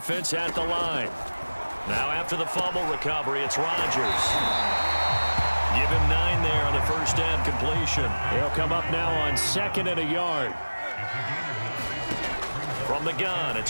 at the line. Now after the fumble recovery, it's Rodgers. Give him 9 there on the first down completion. He'll come up now on 2nd and a yard. From the gun,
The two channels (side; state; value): both; inverted; correlation -1.00